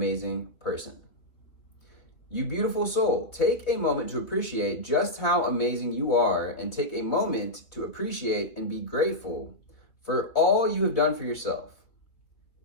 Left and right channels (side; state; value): right; late; 3.0 ms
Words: person. You beautiful soul, take a moment to appreciate just how amazing you are, and take a moment to appreciate and be grateful for all you have done for yourself.